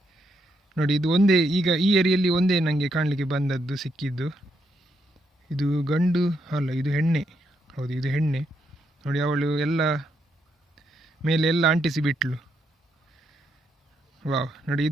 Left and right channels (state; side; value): normal; both; correlation 0.78